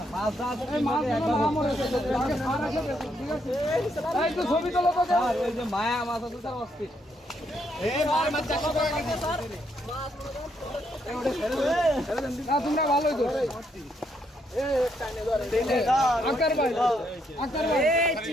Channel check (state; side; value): normal; both; correlation 0.75